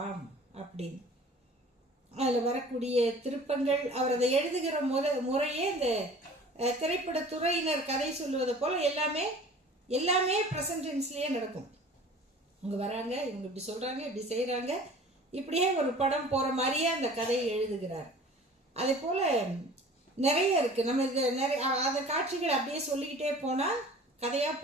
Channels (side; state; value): both; normal; correlation 0.45